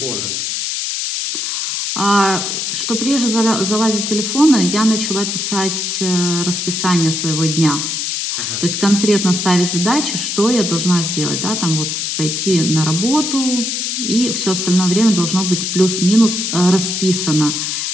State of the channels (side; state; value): left; noise; hiss, 2 dB below the sound